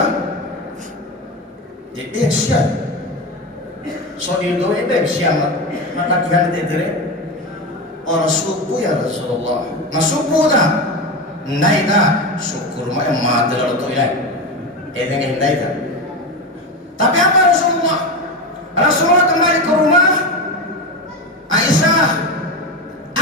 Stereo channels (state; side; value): normal; both; correlation 0.19